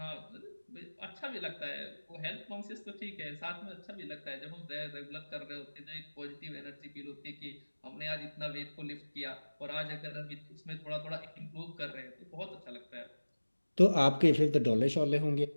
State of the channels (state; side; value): inverted; both; correlation -1.00